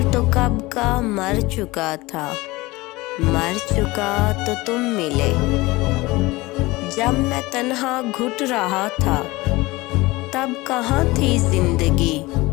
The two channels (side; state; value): right; quieter; 21.2 dB